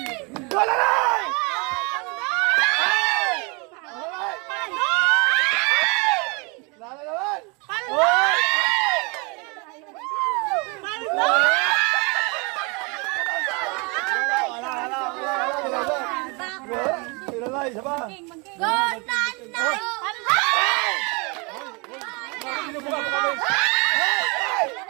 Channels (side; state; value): left; quieter; 30.6 dB